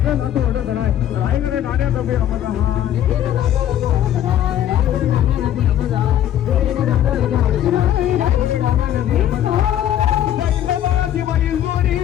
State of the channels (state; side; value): quieter; right; 11.3 dB